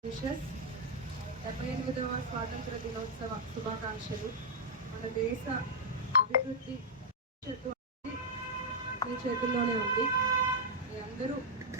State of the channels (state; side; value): normal; both; correlation -0.05